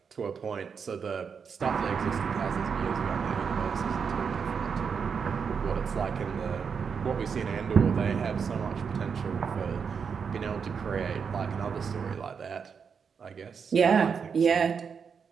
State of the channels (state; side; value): quieter; left; 6.3 dB